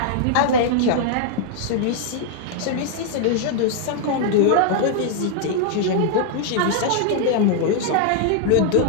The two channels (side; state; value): both; different; correlation 0.00